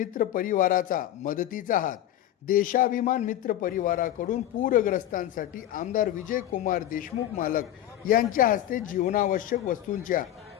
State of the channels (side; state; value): right; quieter; 12.5 dB